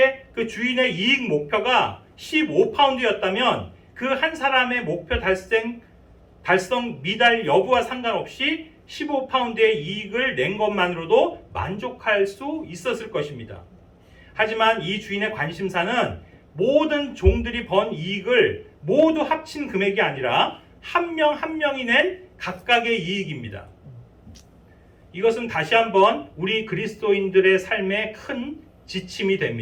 그 주인의 이익 목표가 15파운드였다면 그 한 사람의 목표 달성 미달 여부와 상관없이 15파운드의 이익을 낸 것만으로도 만족할 수 있었을 것입니다. 하지만 이 주인의 관심사는 모든 종들이 번 이익을 모두 합친 금액이 아니라 한 명 한 명이 낸 각각의 이익입니다. 이것은 다시 한번 우리 그리스도인들의 삶에 큰 지침이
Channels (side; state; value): both; identical; correlation 1.00